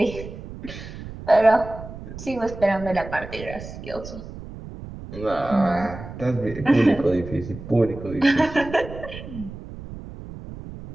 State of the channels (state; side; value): noise; right; rumble, 12 dB below the sound